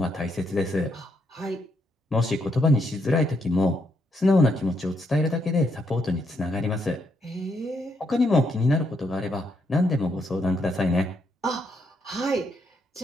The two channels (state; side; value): normal; both; correlation 0.76